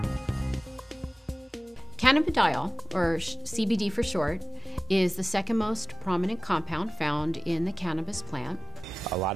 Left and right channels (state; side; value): normal; both; correlation 0.97